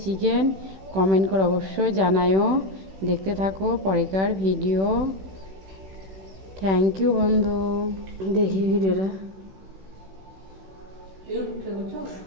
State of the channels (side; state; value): left; late; 16 ms